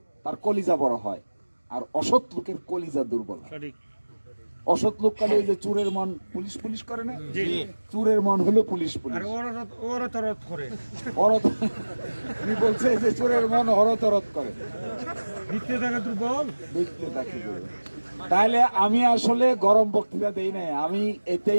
তার কলিজা বড় হয়, আর অসৎ লোকের কলিজা দুর্বল হয়। সঠিক। অসৎ লোক কালে ওই যে চোরের মন পুলিশ পুলিশ করে না, চোরের মন হলো পুলিশ পুলিশ। করে উনি বলছে যে চোরের মন হরতরত করে, ভিত্তি থাকে দুর্বল। দেখতে থাকি। তাহলে আমি আসলে গরম বক্তৃতা দেই নাই, আমি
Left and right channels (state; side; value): inverted; both; correlation -1.00